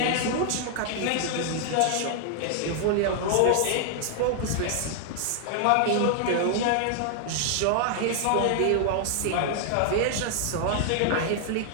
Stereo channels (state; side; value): different; both; correlation 0.00